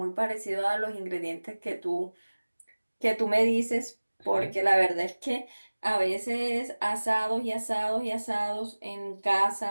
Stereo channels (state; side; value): inverted; both; correlation -1.00